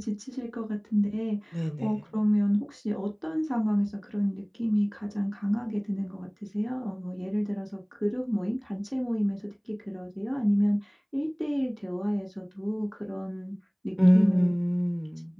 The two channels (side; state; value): both; identical; correlation 1.00